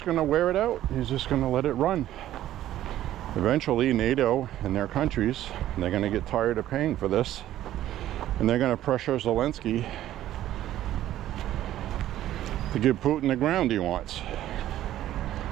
going to wear it out. He's just going to let it run. eventually NATO and their countries, they're going to get tired of paying for this, and they're going to pressure Zelensky to give Putin the ground he wants.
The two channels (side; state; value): left; quieter; 13.1 dB